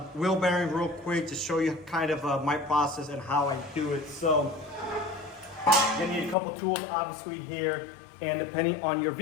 wheel bearing real quick to show you kind of my process and how I do it. So you're gonna need a couple tools, obviously, here, and depending on your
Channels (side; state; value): right; drops out; at 6.4 s